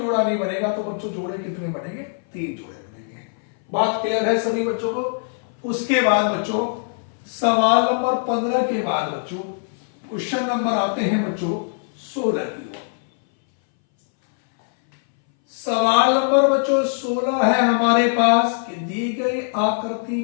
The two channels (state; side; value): silent; right; 61 dB below the other